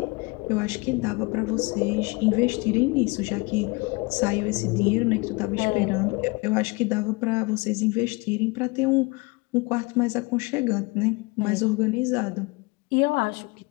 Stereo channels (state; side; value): quieter; right; 26.5 dB